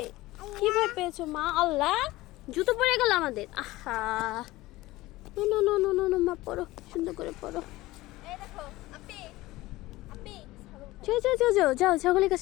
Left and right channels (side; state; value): right; quieter; 18.5 dB